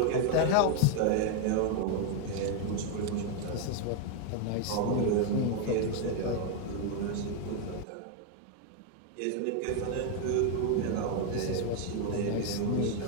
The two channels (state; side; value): different; both; correlation 0.01